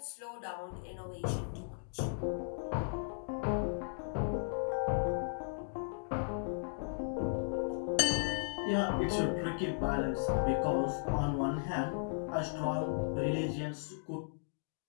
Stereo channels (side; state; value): right; silent; digital silence